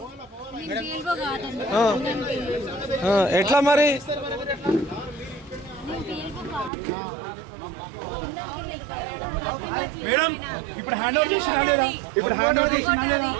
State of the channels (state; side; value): drops out; left; at 6.7 s